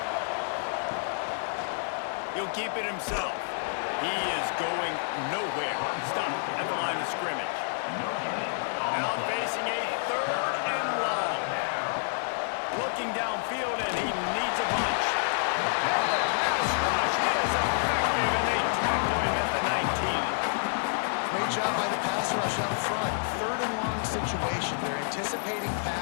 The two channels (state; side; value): silent; right; 59 dB below the other